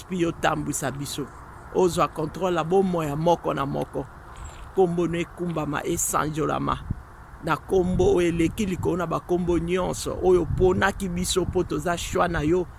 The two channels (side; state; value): both; identical; correlation 1.00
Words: yo tambouisa biso. Ozwa contrôle la bomo ya moko na moko. Kombo no ekumbama esanjolama. Na kombo eleki likolo na bakombo nyonso. Oyo ponaki biso po toza shwa na yo.